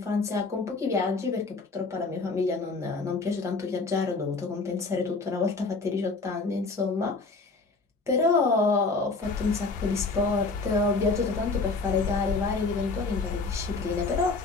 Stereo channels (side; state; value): right; quieter; 3.9 dB